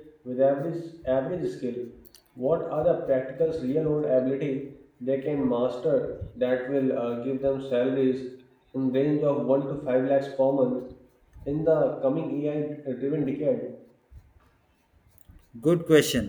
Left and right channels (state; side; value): identical; both; correlation 1.00